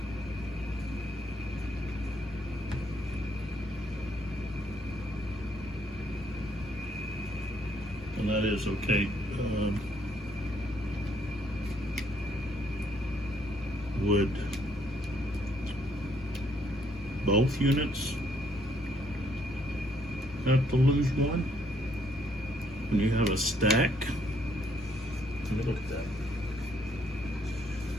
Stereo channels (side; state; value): both; normal; correlation 0.69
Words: And that is okay. Would both units have to lose one when you have a stack? Let me look at that.